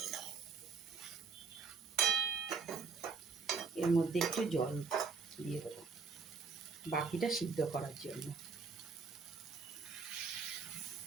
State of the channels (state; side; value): quieter; left; 5.0 dB